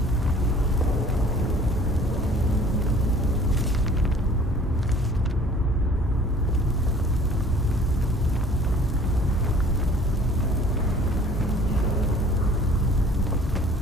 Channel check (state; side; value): normal; both; correlation 0.51